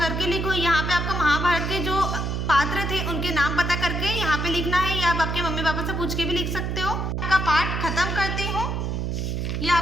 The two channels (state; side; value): noise; right; hum, 1 dB below the sound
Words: लिखो। यहाँ पे आपको महाभारत के जो पात्र थे उनके नाम पता करके यहाँ पे लिखना है, या आप आपके मम्मी पापा से पूछ के भी लिख सकते हो। आपका पाठ खत्म करती हूँ। ये